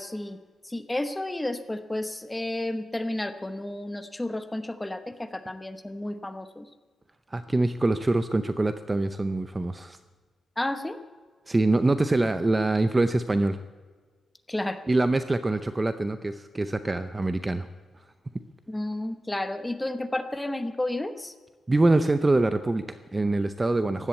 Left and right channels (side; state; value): both; normal; correlation 0.97